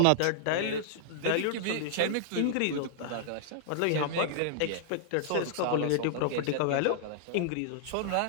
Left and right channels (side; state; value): both; different; correlation -0.01